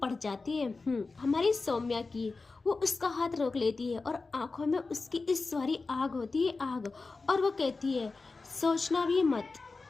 पड़ जाती है हमारी सौम्या की। वो उसका हाथ रोक लेती है और आंखों में उसकी इस सारी आग होती है, आग। और वो कहती है, सोचना भी मत,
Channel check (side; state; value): right; quieter; 3.9 dB